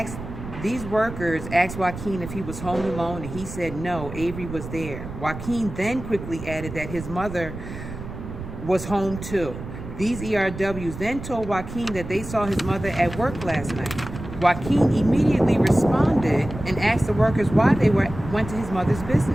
Joaquin if he was home alone, and he said no, Avery was there. Joaquin then quickly added that his mother was home too. These ERWs then told Joaquin that they saw his mother at work last night. Joaquin immediately responded and asked the workers why they went to his mother's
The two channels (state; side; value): noise; right; rumble, 10 dB below the sound